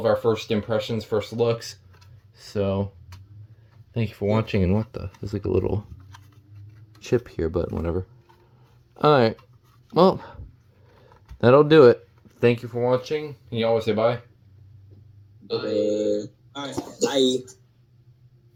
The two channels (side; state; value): both; identical; correlation 1.00